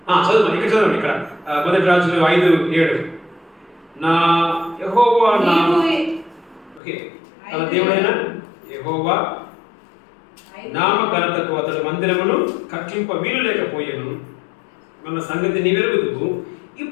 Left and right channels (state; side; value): drops out; right; at 6.8 s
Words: చదువు ఇక్కడ చదవండి. ఇక్కడ 1 రాజులు 5:7. నా యెహోవా నామ, ఓకే, తన దేవుడైన యెహోవా నామఘనతకు అతడు మందిరమును కట్టింప వీలు లేకపోయాను మన సంగతి నీవెరుగుదువు.